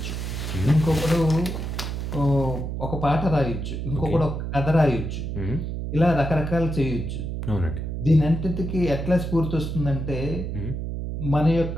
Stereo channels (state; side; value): noise; right; hum, 4 dB below the sound